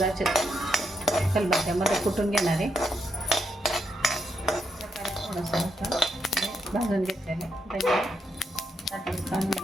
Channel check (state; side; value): normal; both; correlation 0.81